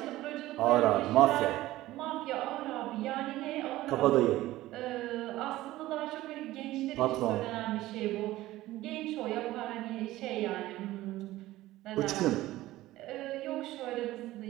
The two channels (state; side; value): quieter; left; 16.5 dB